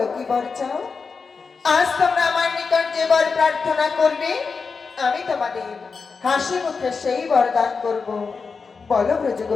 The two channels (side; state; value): right; quieter; 5.0 dB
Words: কি বর চাও? আজ তোমরা আমার নিকট যে বর প্রার্থনা করবে, আমি তোমাদের হাসি মুখে সেই বরদান করব। বলো ব্রজ